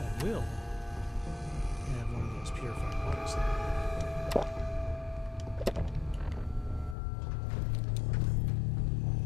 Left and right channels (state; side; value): drops out; right; at 7.0 s